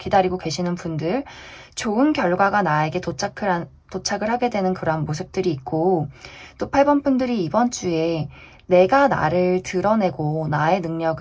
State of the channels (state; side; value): identical; both; correlation 1.00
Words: 계시는 분들, 좋은 결과가 나에게 도착을 하게 되는 그러한 모습들이 있고, 또 8번 분들이 이번 주에 내가 나를 드러내고 나의